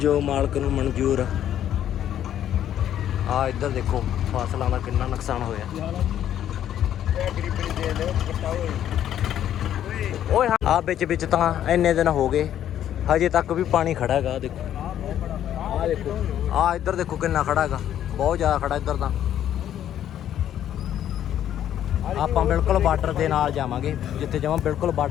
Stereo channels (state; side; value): quieter; right; 10.8 dB